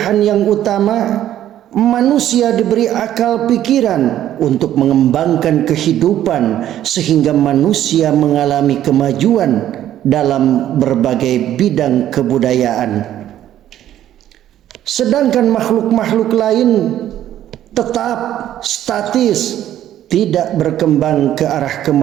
yang utama, manusia diberi akal pikiran untuk mengembangkan kehidupan sehingga manusia mengalami kemajuan dalam berbagai bidang kebudayaan. Sedangkan makhluk-makhluk lain tetap statis, tidak berkembang ke arah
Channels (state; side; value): quieter; left; 11.9 dB